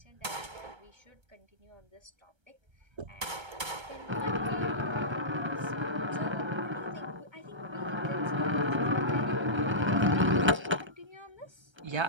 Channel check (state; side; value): late; left; 1.3 ms